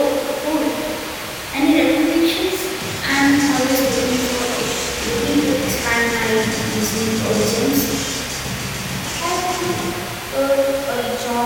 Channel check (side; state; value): both; identical; correlation 1.00